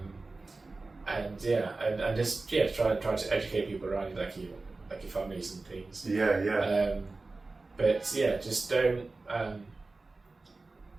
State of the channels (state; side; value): quieter; left; 3.5 dB